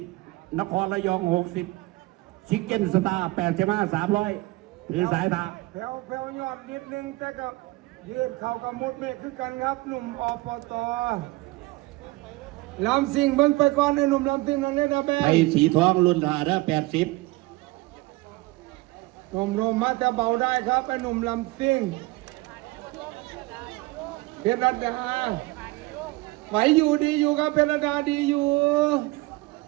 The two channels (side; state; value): left; quieter; 21.4 dB